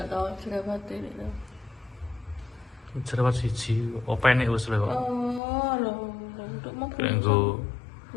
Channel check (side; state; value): right; drops out; at 5.4 s